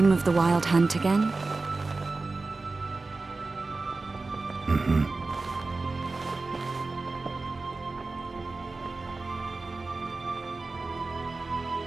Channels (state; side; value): quieter; left; 3.6 dB